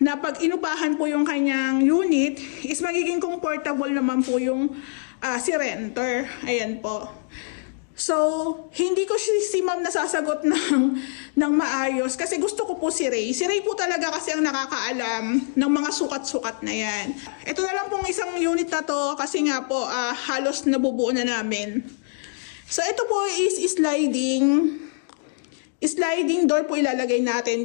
pag inupahan po yung kanyang unit is magiging comfortable naman po yung si renter. Ayan po. So, hindi ko si ma'am nasasagot ng maayos kasi gusto ko po si Ray. Si Ray po talaga kasi ang nakakaalam ng mga sukat-sukat na yan. Ito na lang pong isang unit na to kasi nga po halos nabubuo na namin. So, ito po is sliding door po ilalagay natin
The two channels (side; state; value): right; silent; digital silence